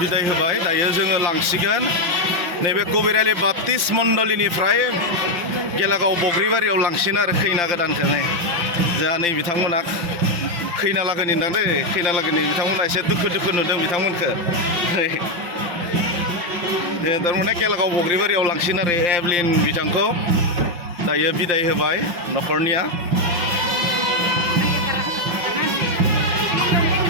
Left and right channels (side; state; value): left; late; 5.8 ms